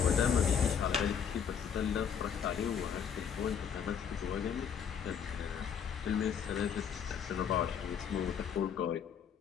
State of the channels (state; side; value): quieter; right; 7.5 dB